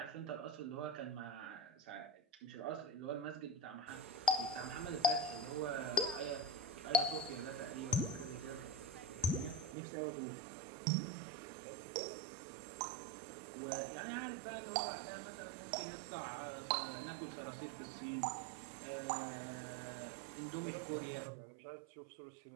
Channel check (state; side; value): drops out; left; at 9.8 s